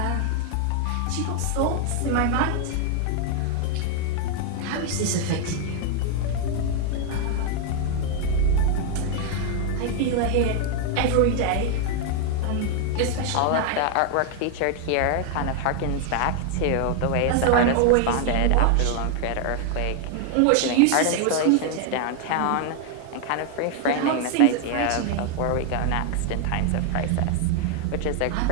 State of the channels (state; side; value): different; both; correlation 0.00